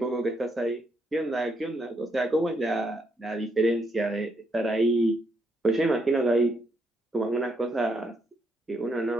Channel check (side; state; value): both; normal; correlation 0.76